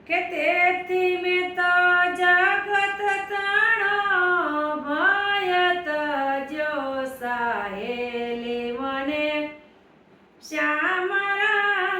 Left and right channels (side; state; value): both; identical; correlation 1.00